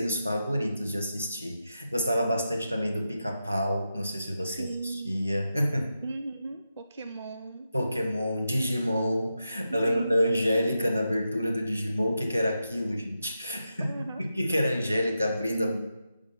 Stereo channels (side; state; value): both; inverted; correlation -0.88